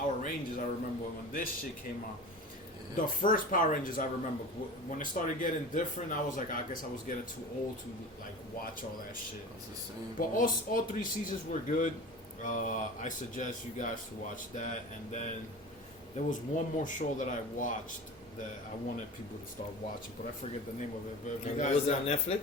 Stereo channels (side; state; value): both; normal; correlation 0.34